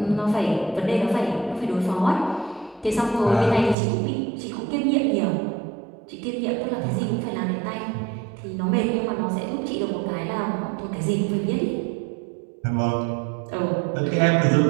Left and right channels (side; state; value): left; drops out; at 3.8 s